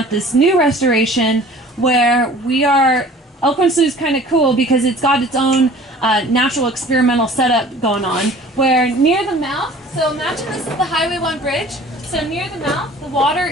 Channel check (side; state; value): both; normal; correlation 0.47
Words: this new restoration where we are. Elkhorn Slough is kind of cool because it's got its own natural experimental setup going on, where near the mouth, so imagine this is the Highway 1 bridge, so near the mouth the water